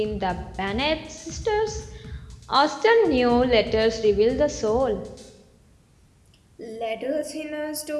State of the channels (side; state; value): both; identical; correlation 1.00